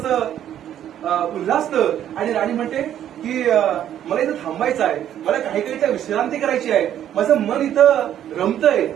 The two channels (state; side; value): quieter; left; 10.8 dB